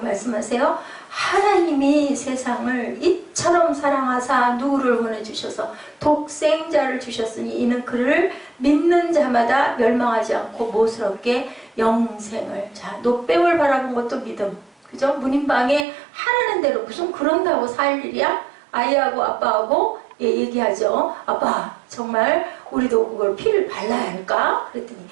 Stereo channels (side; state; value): left; drops out; at 15.9 s